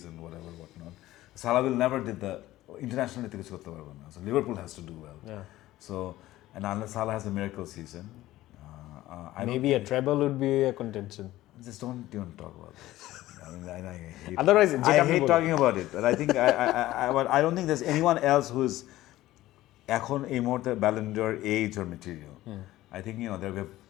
and whatnot. Salah will never did the international. So Liverpool has to do well. Yeah. So, and unless Salah has a miracle season, maybe a treble would be a contention. Just don't even talk about this. I mean, I hate. Otherwise, I hate talking about it. But I think I don't think there's anyone else who's এখন এই মুহূর্তে Ballon d'Or age or material. I think there we have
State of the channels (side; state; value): right; quieter; 15.9 dB